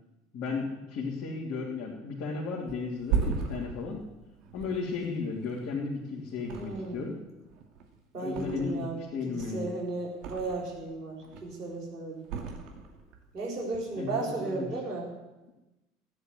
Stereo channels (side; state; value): both; normal; correlation 0.41